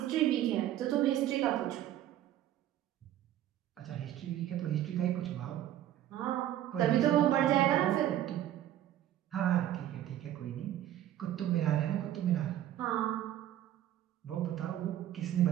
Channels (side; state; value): left; quieter; 12.3 dB